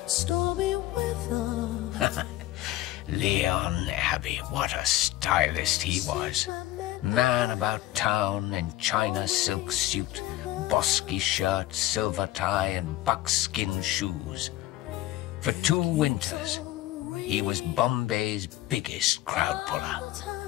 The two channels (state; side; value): quieter; right; 15.5 dB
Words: stormy weather. Leon Abbey, what a stylist he was. Man about town in China silk suit, bosky shirt, silver tie and buckskin shoes. For 2 winters, he was Bombay's biggest crowd puller.